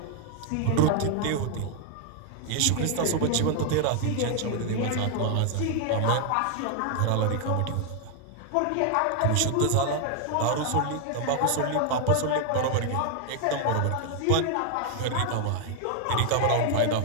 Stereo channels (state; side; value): different; both; correlation 0.00